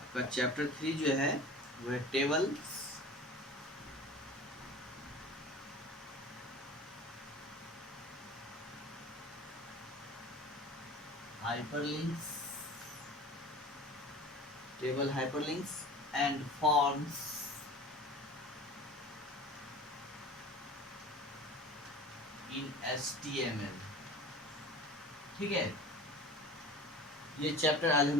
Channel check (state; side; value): normal; both; correlation 0.39